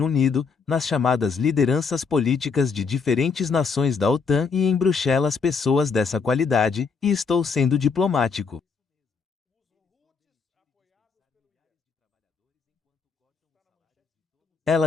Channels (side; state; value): right; quieter; 5.3 dB